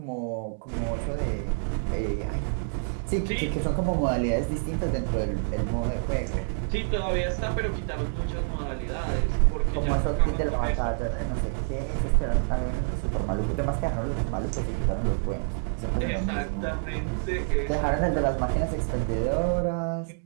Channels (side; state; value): left; silent; digital silence